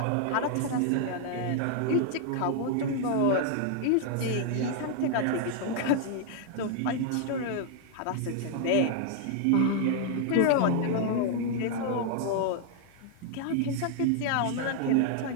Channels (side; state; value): both; different; correlation 0.00